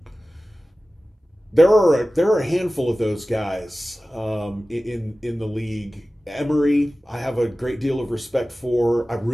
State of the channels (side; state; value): both; normal; correlation 0.96